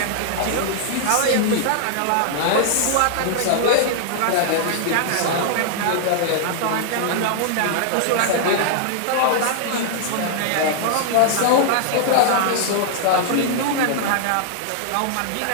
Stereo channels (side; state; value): both; different; correlation -0.01